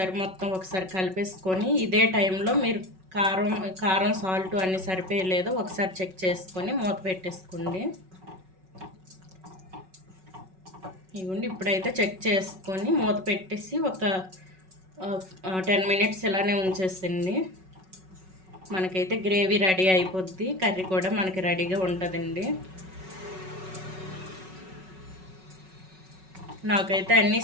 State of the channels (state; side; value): late; left; 5.4 ms